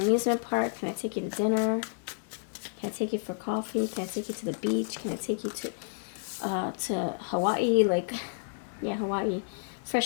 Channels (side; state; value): right; silent; digital silence